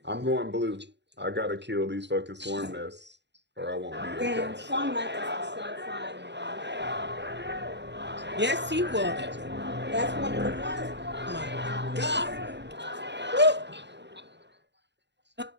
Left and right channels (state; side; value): late; left; 0.51 ms